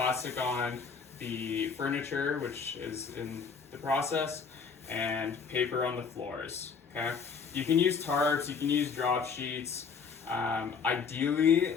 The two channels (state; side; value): quieter; right; 5.8 dB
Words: on the furniture, which is in the process, and paper on the floors, okay? You can use tarps, you can use drop sheets. Ideally,